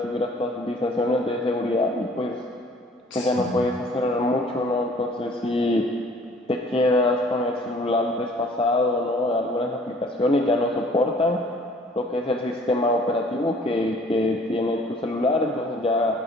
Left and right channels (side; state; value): both; normal; correlation 0.54